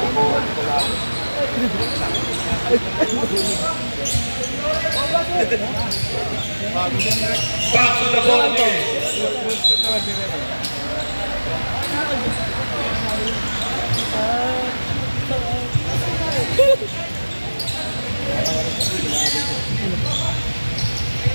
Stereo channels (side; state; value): both; inverted; correlation -1.00